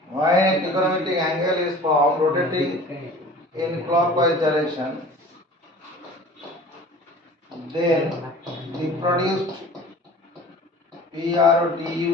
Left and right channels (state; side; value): normal; both; correlation 0.43